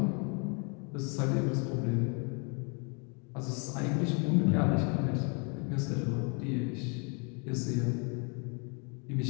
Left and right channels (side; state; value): right; quieter; 35.2 dB